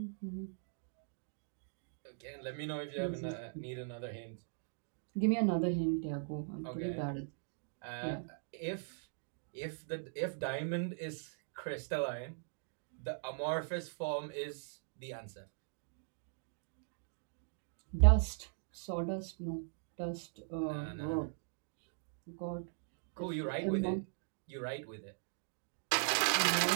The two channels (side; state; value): left; silent; digital silence